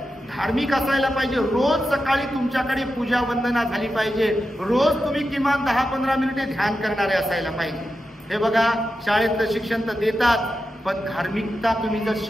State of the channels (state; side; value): normal; both; correlation 0.90